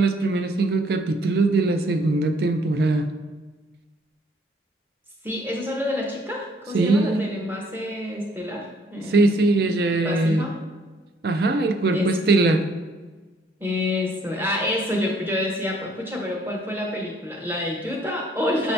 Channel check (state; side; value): normal; both; correlation 0.63